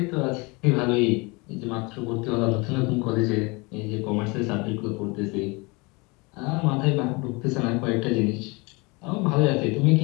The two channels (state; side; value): quieter; right; 27.0 dB